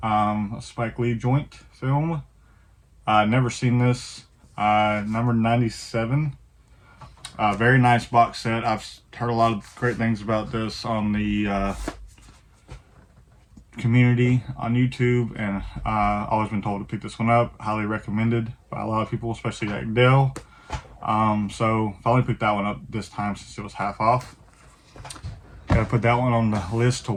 a Spike Lee joint film. Never seen this. Number 97. Very nice box set. I've heard a lot of great things about this on the community on YouTube, and always been told to pick this one up. Highly recommended by a lot of people, especially like Dale. So finally picked that one up this time since it was half off. Gotta put that one on the list to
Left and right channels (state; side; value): identical; both; correlation 1.00